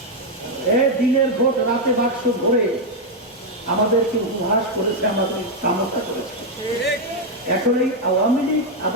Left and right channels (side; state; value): both; normal; correlation 0.01